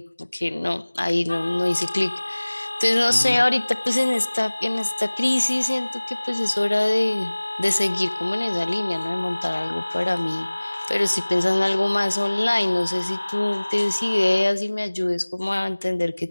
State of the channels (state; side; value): inverted; both; correlation -1.00